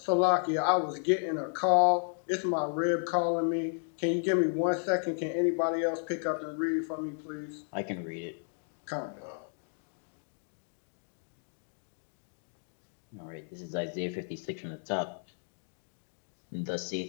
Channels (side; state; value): right; silent; 56 dB below the other